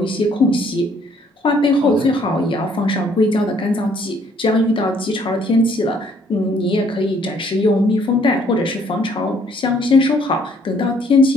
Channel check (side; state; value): both; normal; correlation 0.63